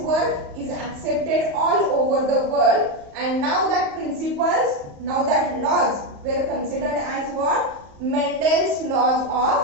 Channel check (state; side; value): late; left; 34 ms